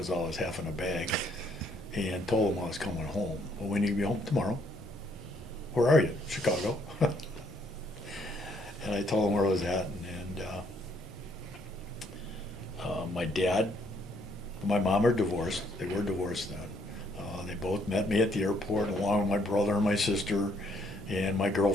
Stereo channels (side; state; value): both; normal; correlation 0.68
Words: I was half in a bag, and told them I was coming home. Well, we need to be home tomorrow. Where are you? Chicago. And I told them where I was at. And my dad, my mom are divorced. They were divorced then. They both met me at the airport, along with my brother and my sister and my